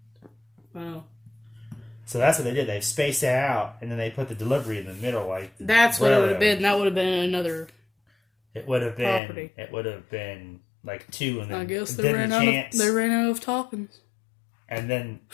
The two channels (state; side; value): drops out; right; at 9.2 s